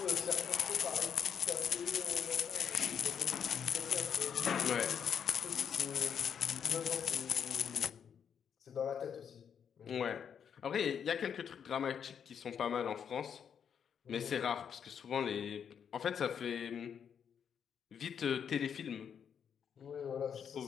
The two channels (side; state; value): right; quieter; 7.7 dB